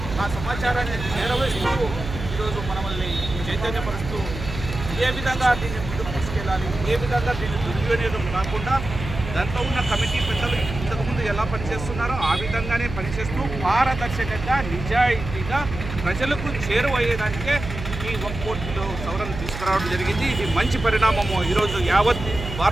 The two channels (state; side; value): noise; right; hum, 8 dB below the sound